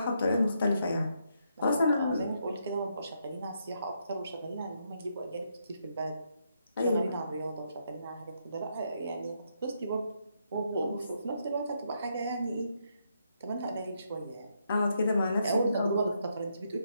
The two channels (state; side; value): inverted; both; correlation -0.77